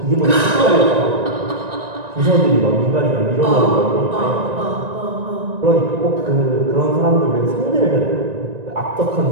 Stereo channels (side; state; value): left; late; 1.9 ms